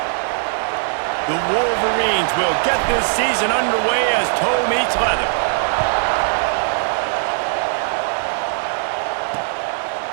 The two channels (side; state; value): left; silent; digital silence